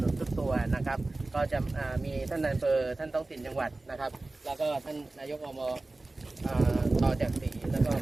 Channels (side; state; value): left; quieter; 3.1 dB